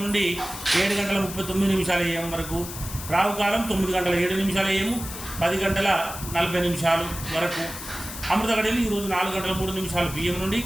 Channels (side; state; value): left; noise; hiss, 10 dB below the sound